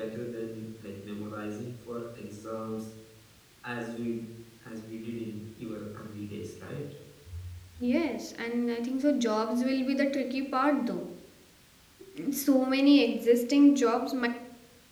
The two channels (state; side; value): identical; both; correlation 1.00